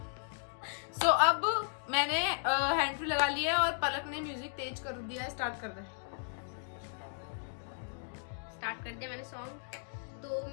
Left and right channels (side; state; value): right; silent; digital silence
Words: So अब मैंने हैंड फ्री लगा लिया है और पलक ने म्यूजिक तेज कर दिया है. स्टार्ट कर दे. स्टार्ट कर दिया मैंने सॉन्ग. तो